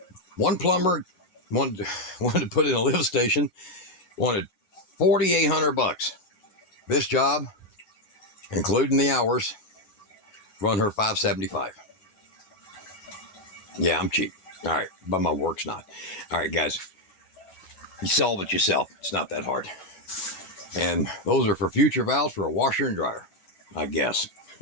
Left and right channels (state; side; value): late; right; 11 ms